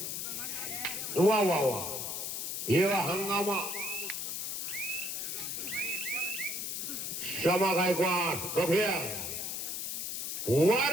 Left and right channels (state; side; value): noise; left; hiss, 3 dB below the sound